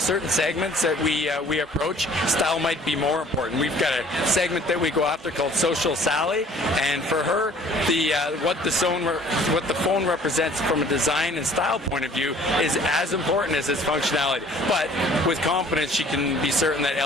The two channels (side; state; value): both; normal; correlation 0.53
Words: segments that we approach, style might be more important. We've got a segment that we go after called Social Sally, and for her, what the phone represents from a design and style point of view is as important as its functionality. But with confidence, she can be certain that